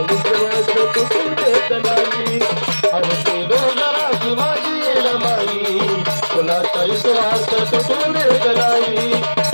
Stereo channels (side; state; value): both; inverted; correlation -1.00